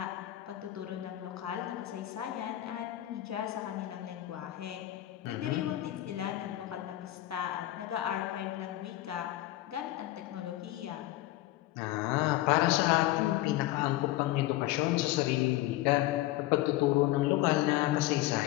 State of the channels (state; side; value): quieter; right; 15.8 dB